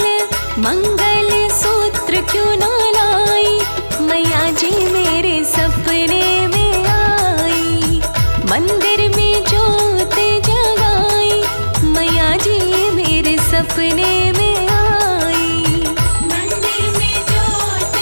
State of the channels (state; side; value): inverted; both; correlation -1.00